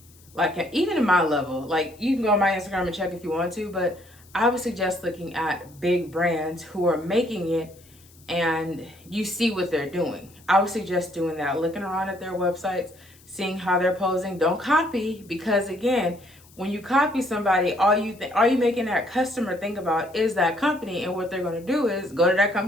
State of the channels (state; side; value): noise; left; hiss, 26 dB below the sound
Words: like, even in my level. Like, you can go on my Instagram and check if you want to, but I would suggest looking at big brands who are making it and you see what they're doing. I would suggest doing that, looking around at their websites, seeing how they're posing. Don't copy, because again, when you copy somebody, all you making that customer think about is that company, and what they're going to do is go to that